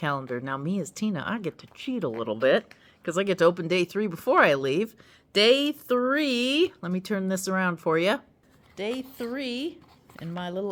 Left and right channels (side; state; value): both; identical; correlation 1.00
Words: Now, me as Tina, I get to cheat a little bit because I get to open day 3 before I leave. Day 3, let me turn this around for you. Day 3 in my